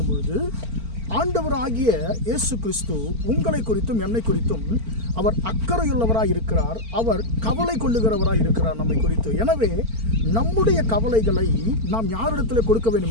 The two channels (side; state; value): left; late; 4.4 ms